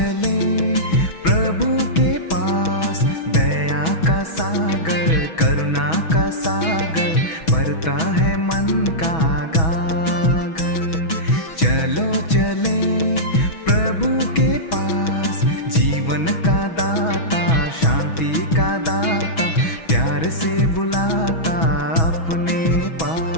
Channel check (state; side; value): late; right; 6.2 ms